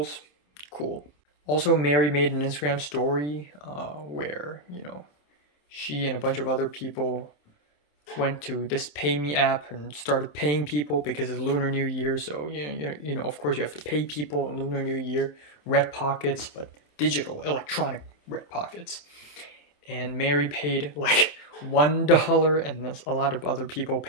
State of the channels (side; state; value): right; late; 27 ms